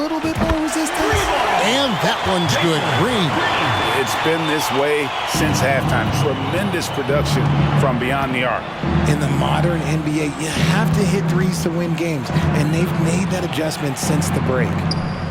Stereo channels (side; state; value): both; identical; correlation 1.00